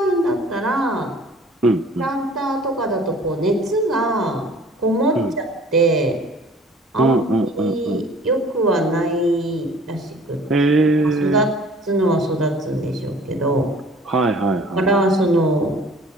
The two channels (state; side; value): normal; both; correlation 0.50